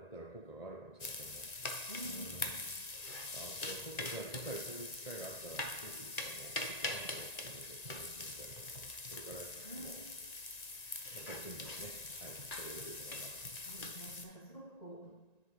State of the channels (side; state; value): right; late; 1.9 ms